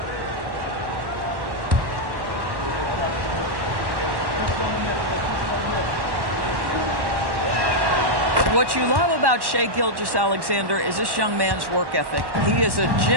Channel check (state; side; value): late; left; 1.1 ms